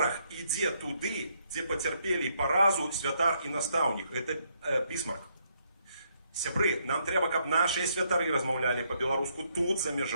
ідзе туды, дзе пацярпелі паразу святар і настаўнік. Это Бісмарк. Сябры, нам трэба, каб нашыя святары размаўлялі па-беларуску тут, за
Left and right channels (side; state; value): both; inverted; correlation -0.74